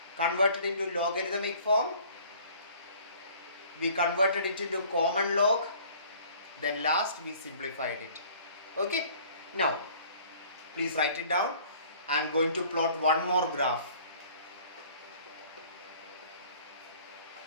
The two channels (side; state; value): both; inverted; correlation -0.52